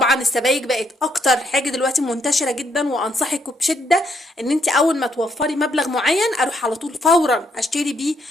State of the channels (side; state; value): both; normal; correlation 0.73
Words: السبايك بقت اكتر حاجه دلوقتي منتشره جدا، وانصحك بشده ان انت اول ما توفري مبلغ معين اروح على طول فورا اشتري بيه